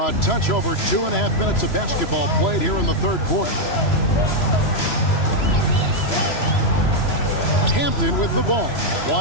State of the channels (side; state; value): right; late; 3.0 ms